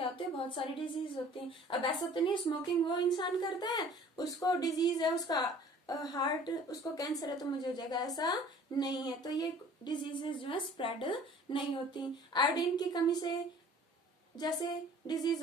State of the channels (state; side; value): normal; both; correlation 0.50